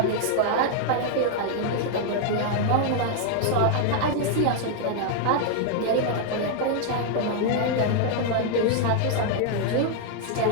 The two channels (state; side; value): different; both; correlation 0.00